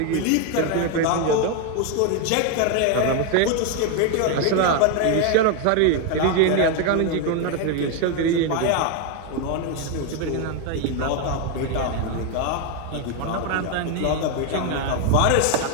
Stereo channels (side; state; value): both; different; correlation 0.01